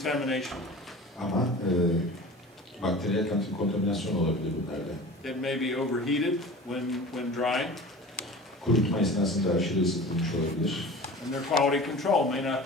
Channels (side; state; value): both; normal; correlation 0.38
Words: Ama bakteriyel kontaminasyon olabilir bunlarda. It may be overheated when drying, Kurutma esnasında aşırı ısıtılmış olabilir. and their quality control may not